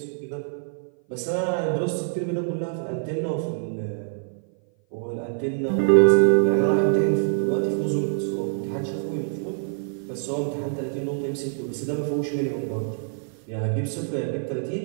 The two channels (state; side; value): silent; left; 57 dB below the other